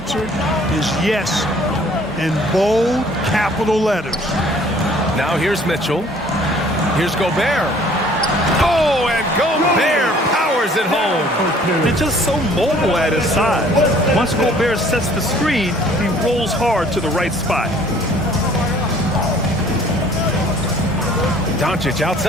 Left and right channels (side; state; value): both; normal; correlation 0.55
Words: is yes, in bold capital letters. Now here's Mitchell. Here's Gobert. Oh, and Gobert powers it home. They're just so mobile at his size. Once Gobert sets the screen, he rolls hard to the right spot. Doncic